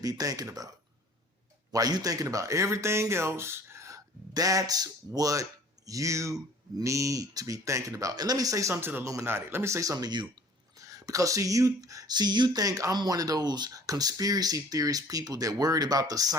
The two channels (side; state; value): both; normal; correlation 0.50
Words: thinking about. While you're thinking about everything else, that's what you need to be thinking about. And let me say something to the Illuminati. Let me say something to you. Because you think I'm one of those conspiracy theorist people that worried about the